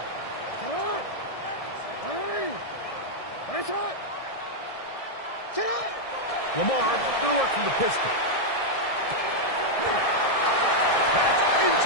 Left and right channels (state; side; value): late; right; 1.6 ms